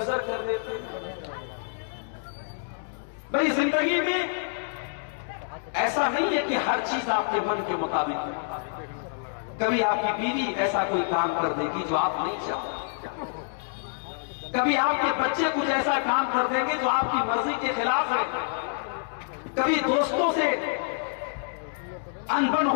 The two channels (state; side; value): silent; right; digital silence